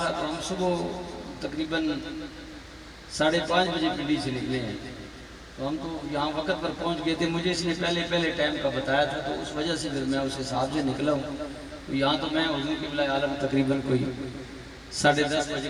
تو ہم صبح تقریباً 5:30 بجے پنڈی سے نکلے ہیں تو ہم تو یہاں وقت پر پہنچ گئے تھے مجھے اس نے پہلے ٹائم کا بتایا تھا تو اس وجہ سے پھر میں اس حساب سے نکلا ہوں تو یہاں تو میں حضور قبلہ عالم تقریباً کوئی 10:30 بجے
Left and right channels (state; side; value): identical; both; correlation 1.00